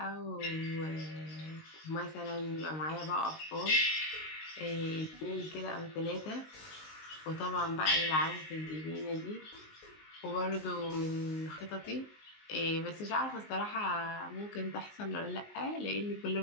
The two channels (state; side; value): late; right; 19 ms